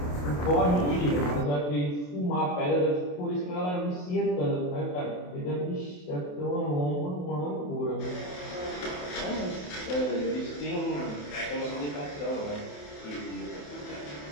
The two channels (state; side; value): late; right; 28 ms